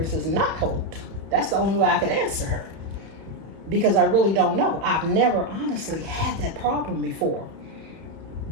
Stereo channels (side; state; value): left; late; 31 ms